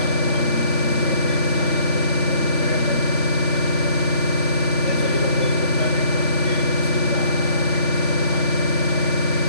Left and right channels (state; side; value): late; right; 3.5 ms